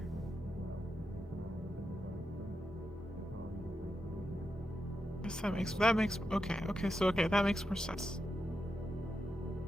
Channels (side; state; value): both; normal; correlation 0.87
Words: Yes, that makes okay, that makes more sense.